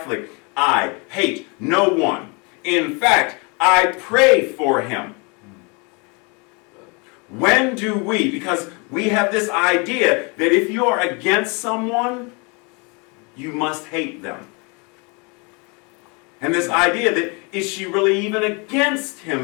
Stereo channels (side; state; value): right; quieter; 31.4 dB